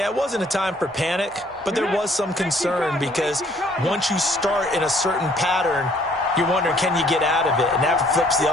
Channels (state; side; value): normal; both; correlation 0.61